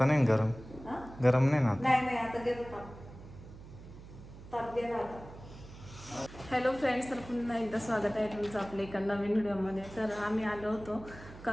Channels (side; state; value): right; noise; hum, 16 dB below the sound